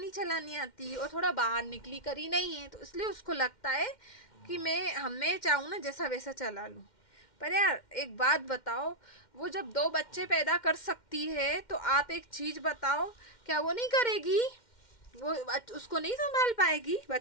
चलानी आती और थोड़ा बाहर निकली करी नहीं है, तो इसलिए उसको लगता है कि मैं चाहूँ ना जैसा वैसा चला लूँ। पर यार एक बात बताओ, वो जब 2 बच्चे पैदा कर सकती है तो आप एक चीज़ बताओ, क्या वो नहीं करेगी, वो उसको नहीं संभाल पाएगी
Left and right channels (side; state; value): right; late; 2.1 ms